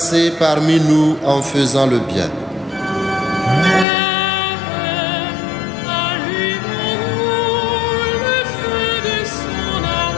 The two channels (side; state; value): right; drops out; at 3.9 s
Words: parmi nous en faisant le bien.